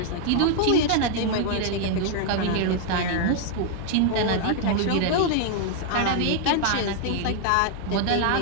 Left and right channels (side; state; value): both; different; correlation 0.00